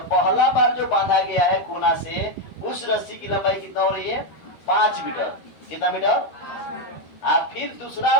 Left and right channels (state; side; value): late; right; 12 ms